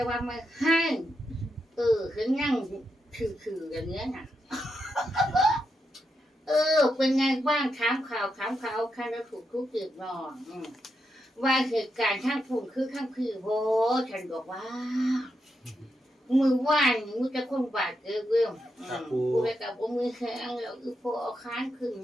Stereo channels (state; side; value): normal; both; correlation 0.84